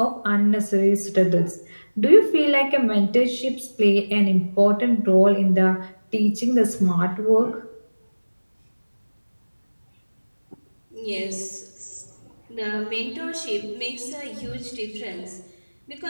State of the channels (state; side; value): inverted; both; correlation -1.00